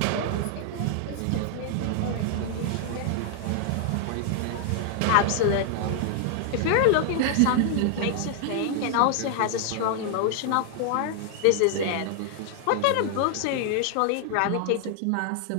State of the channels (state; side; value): different; both; correlation 0.00